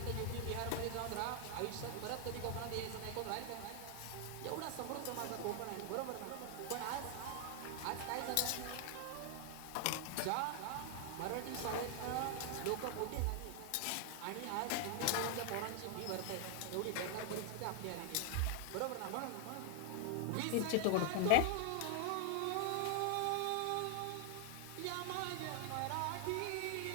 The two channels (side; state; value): both; different; correlation 0.00